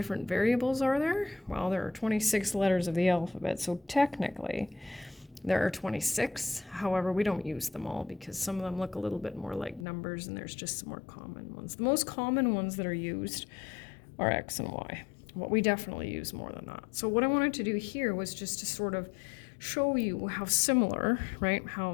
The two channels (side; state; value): right; drops out; at 9.9 s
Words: variables are there? Well, there are 26 letters of the alphabet, so technically there are 26. However, we don't use them all because some of them look a little bit more like numbers, and there's just some more common ones. The most common ones that are used are X and Y. But we definitely use more than that. So what I wanted to do here was just to sort of show you how similar, right,